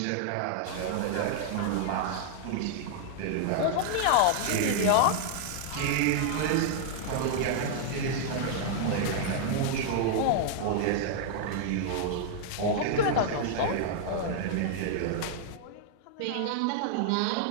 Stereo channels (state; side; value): different; both; correlation -0.01